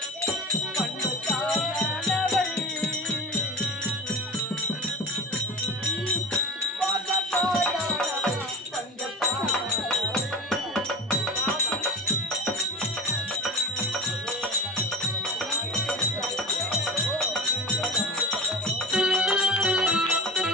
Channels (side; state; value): both; normal; correlation 0.31